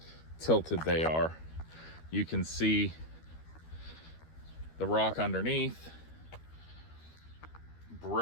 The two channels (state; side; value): late; right; 13 ms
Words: tilted they are. You can see the rock underneath,